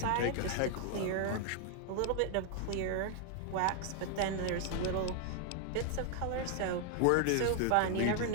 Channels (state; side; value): different; both; correlation 0.00